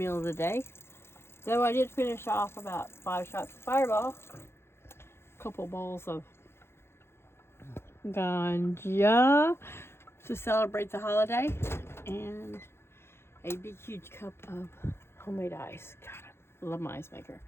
of the day. Though I did finish off about 5 shots of Fireball, a couple bowls of ganja to celebrate the holiday, and a big huge cup of homemade ice. God, I love my ice maker.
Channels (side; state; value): right; late; 0.12 ms